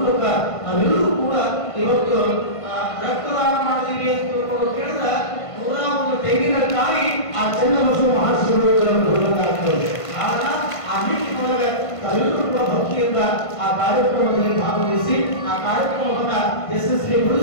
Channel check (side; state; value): right; late; 1.5 ms